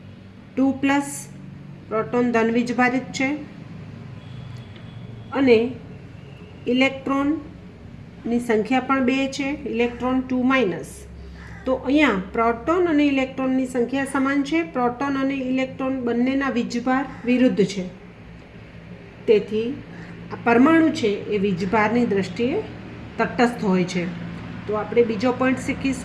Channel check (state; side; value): identical; both; correlation 1.00